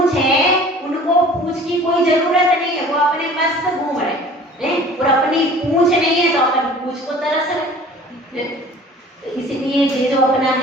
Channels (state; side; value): normal; both; correlation 0.46